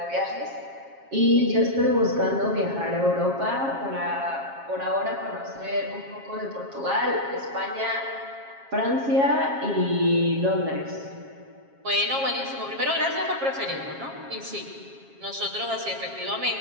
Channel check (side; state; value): left; late; 7.4 ms